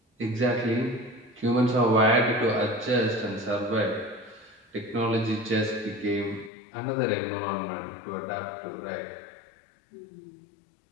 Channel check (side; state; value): right; drops out; at 6.5 s